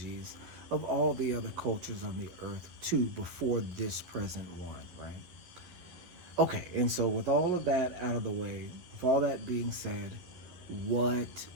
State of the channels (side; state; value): left; late; 11 ms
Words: of all the other cultures on the earth too before this present one, right? Okay, and so with all of that out of the way, with all that being said, what